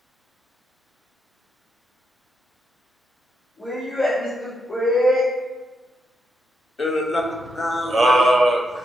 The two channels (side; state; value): both; normal; correlation 0.82